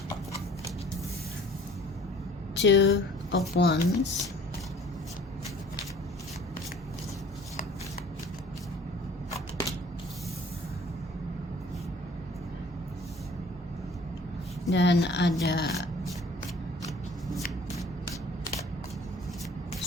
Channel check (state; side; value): normal; both; correlation 0.51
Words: Two of Wands. Dan ada